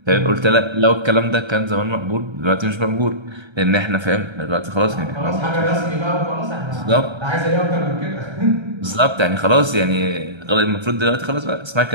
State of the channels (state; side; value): late; left; 1.3 ms